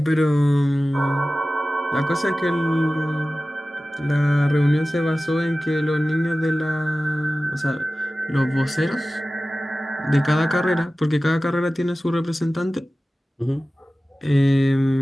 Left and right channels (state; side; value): normal; both; correlation 0.96